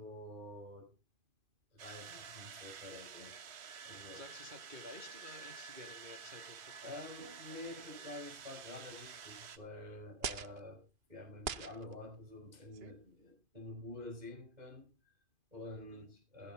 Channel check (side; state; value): left; late; 2.5 ms